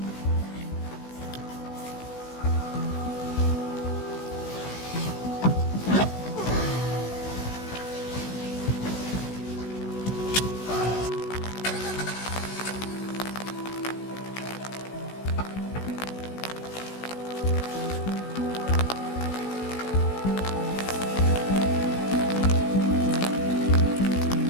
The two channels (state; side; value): late; right; 16 ms